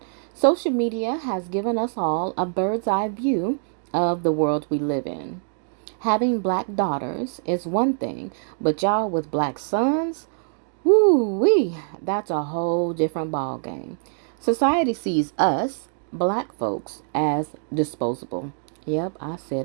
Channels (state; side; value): silent; left; 62 dB below the other